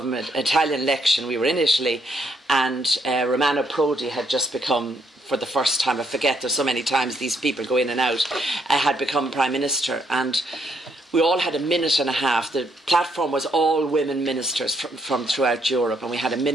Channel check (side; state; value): both; normal; correlation 0.73